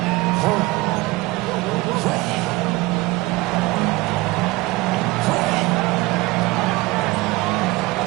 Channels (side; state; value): left; quieter; 21.5 dB